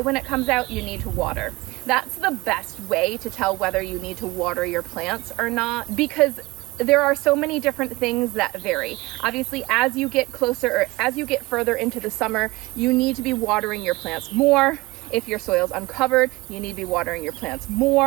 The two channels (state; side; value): quieter; left; 22.1 dB